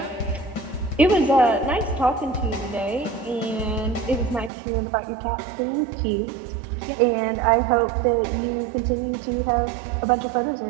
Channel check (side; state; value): left; drops out; at 4.5 s